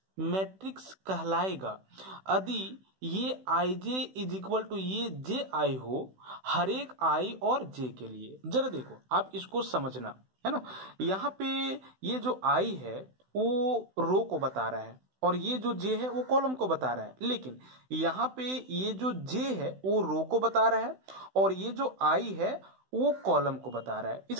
matrix कहलाएगा यदि ये i j is equal to ये जे आई हो हर एक आई और जे के लिए। जरा देखो आप इसको समझना, है ना। यहाँ पे ये जो आई है वो रो को बता रहा है और ये जो जे है वो कॉलम को बता रहा है, लेकिन यहाँ पे ये जो जे है वो रो को बता रहा है और ये जो आई है वो कॉलम को बता रहा है।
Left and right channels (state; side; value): late; left; 16 ms